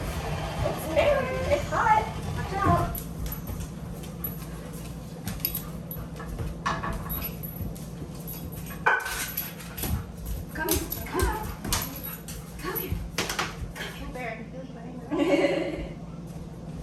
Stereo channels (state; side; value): identical; both; correlation 1.00